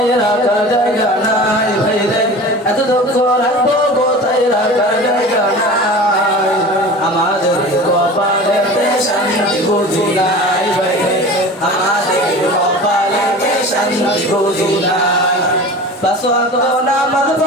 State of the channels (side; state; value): both; normal; correlation 0.36